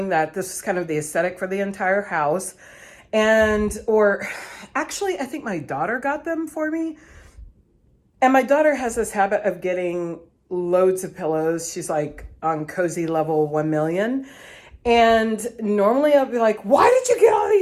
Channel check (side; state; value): both; identical; correlation 1.00